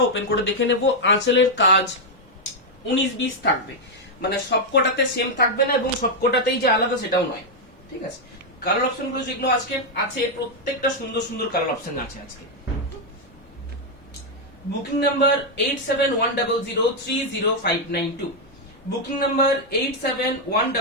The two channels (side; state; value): both; normal; correlation 0.00